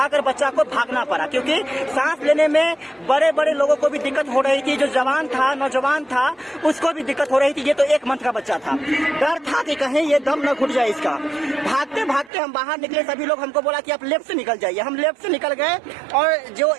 बच्चा को भागना पड़ा, क्योंकि सांस लेने में बड़े बड़े लोगों को भी दिक्कत हो रही थी। जो जवान था, नौजवान था, उसको भी दिक्कत हो रही थी। ये तो 1 मंथ का बच्चा था। डर था कि कहीं ये दम न घुट जाए इसका। भागते भागते हम बाहर निकले। सभी लोग हमको बोला कि आप लेफ्ट से निकल जाइए। हम लेफ्ट से निकल गए और जो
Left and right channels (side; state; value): left; drops out; at 12.3 s